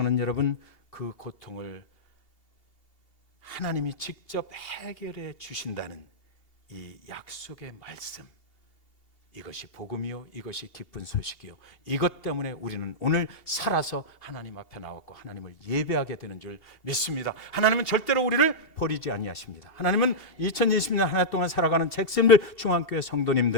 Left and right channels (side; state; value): right; late; 2.8 ms